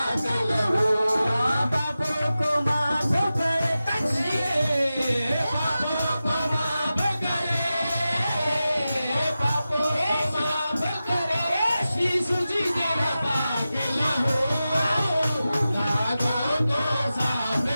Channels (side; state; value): both; inverted; correlation -0.94